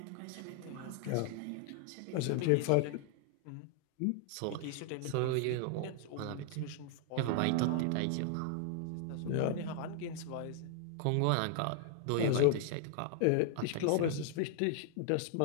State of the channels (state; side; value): different; both; correlation 0.00